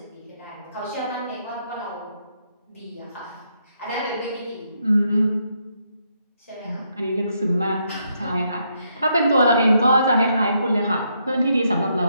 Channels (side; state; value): both; inverted; correlation -0.76